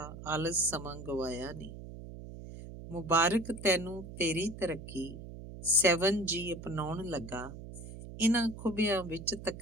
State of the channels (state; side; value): noise; right; hum, 12 dB below the sound